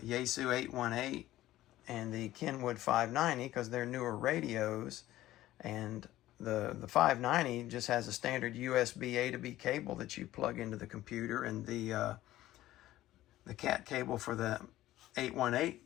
818 and the Kenwood 590 because they're newer radios, and the 590 just has a standard USB A to B cable that you plug into the computer, and the cat cable for the 818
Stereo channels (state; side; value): quieter; right; 15.0 dB